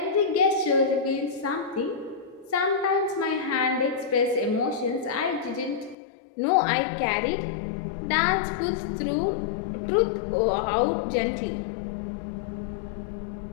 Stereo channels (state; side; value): drops out; right; at 6.0 s